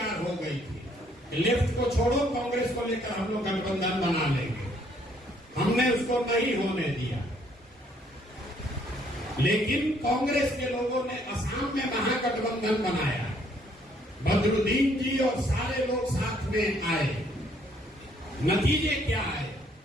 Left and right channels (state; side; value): normal; both; correlation 0.66